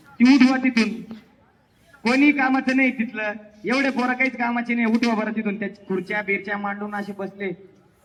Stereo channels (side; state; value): both; identical; correlation 1.00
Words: ती उठवा तिथून. कोणी कामाचं नाही तिथलं, एवढे पोरं काहीच कामाचे नाही. उठवा बरं तिथून. त्या खुर्च्या बिरच्या मांडून असे बसले.